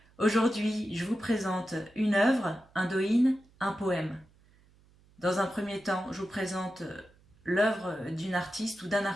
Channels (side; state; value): right; noise; hum, 30 dB below the sound